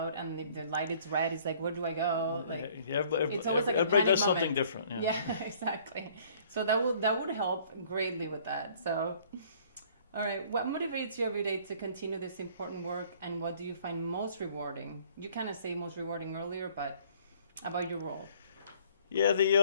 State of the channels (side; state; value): both; inverted; correlation -0.57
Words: and the light is red. It's like, where do I go? Like, it's always like everybody does something different. Yeah, exactly. So that would help greatly with that. So, all right, what motivates you every day to continue this important work, and what do you find most rewarding? You kind of say most rewarding earlier, but about your role. Yeah,